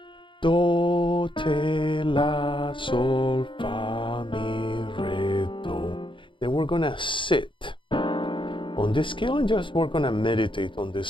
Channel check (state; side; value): late; right; 0.24 ms